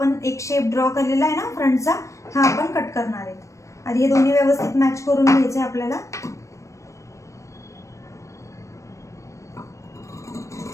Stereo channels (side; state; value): right; late; 0.15 ms